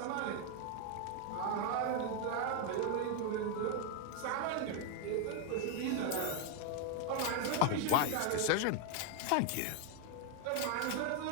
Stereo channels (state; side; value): different; both; correlation 0.01